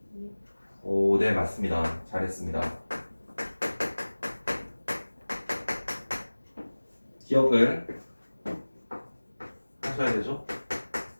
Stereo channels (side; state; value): both; inverted; correlation -1.00